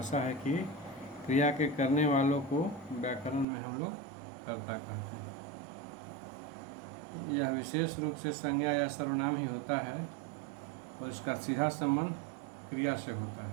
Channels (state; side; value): drops out; left; at 3.5 s